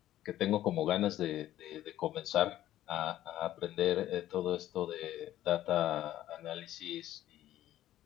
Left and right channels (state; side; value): quieter; right; 13.4 dB